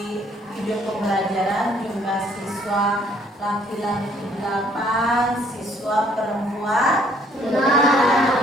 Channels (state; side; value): normal; both; correlation 0.63